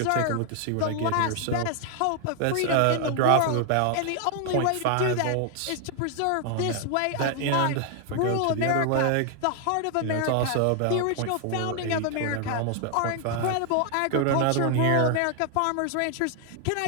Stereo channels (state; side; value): different; both; correlation 0.00